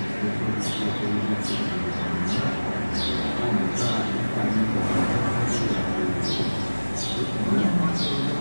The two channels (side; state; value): both; inverted; correlation -1.00